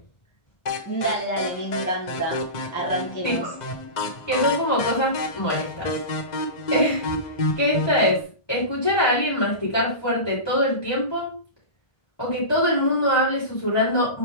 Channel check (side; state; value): right; late; 2.0 ms